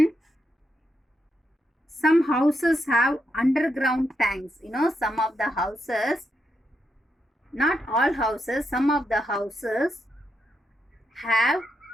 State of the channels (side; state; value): both; normal; correlation 0.82